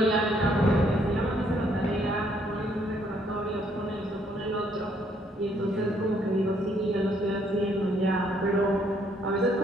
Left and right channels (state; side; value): normal; both; correlation 0.68